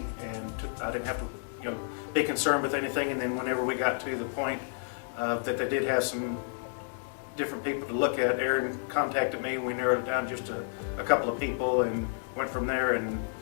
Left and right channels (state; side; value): silent; right; digital silence